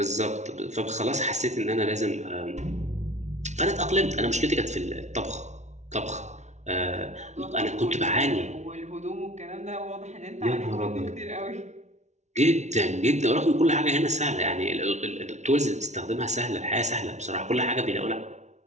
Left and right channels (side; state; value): left; late; 0.33 ms